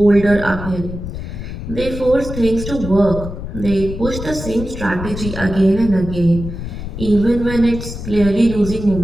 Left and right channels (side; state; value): left; noise; rumble, 8 dB below the sound